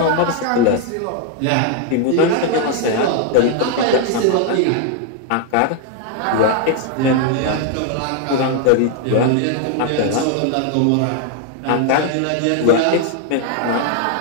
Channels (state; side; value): different; both; correlation 0.00